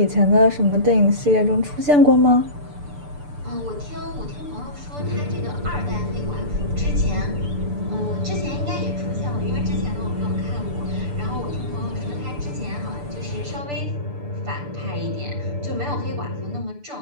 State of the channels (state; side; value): late; left; 6.8 ms